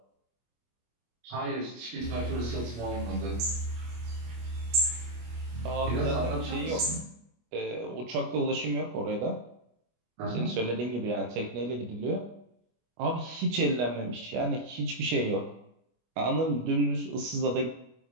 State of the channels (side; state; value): left; late; 25 ms